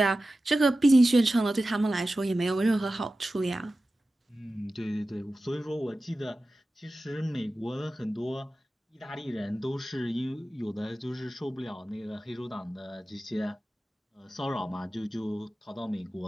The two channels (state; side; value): normal; both; correlation 0.95